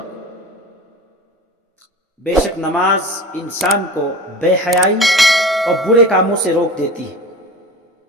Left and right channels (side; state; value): both; normal; correlation 0.35